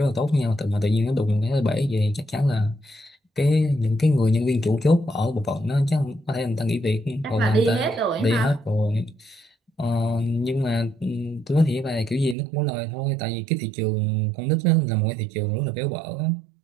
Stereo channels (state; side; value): drops out; left; at 12.4 s